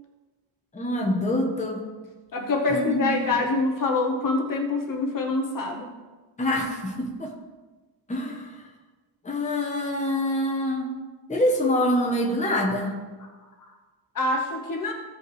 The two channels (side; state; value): both; normal; correlation 0.28